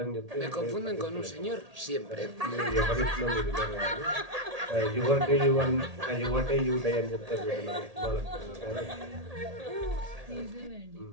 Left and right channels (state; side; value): late; left; 1.8 ms